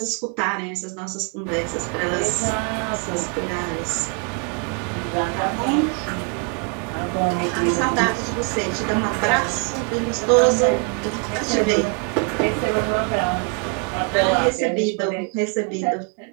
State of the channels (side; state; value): left; quieter; 37.5 dB